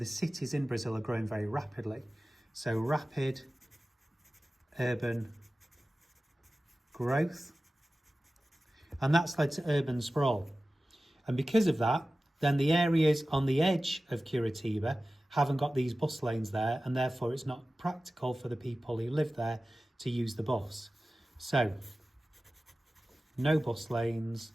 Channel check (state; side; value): normal; both; correlation 0.96